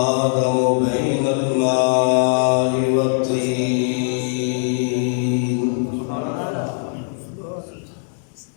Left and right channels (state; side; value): silent; right; digital silence